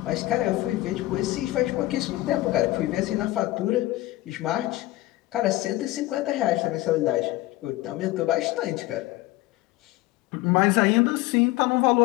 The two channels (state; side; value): quieter; right; 17.7 dB